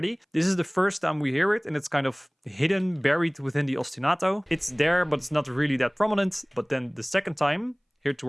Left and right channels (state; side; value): identical; both; correlation 1.00